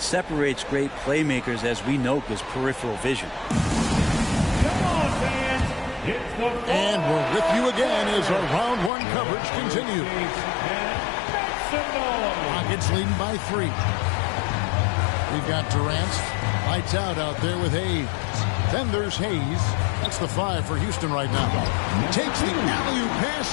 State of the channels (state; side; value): drops out; right; at 8.9 s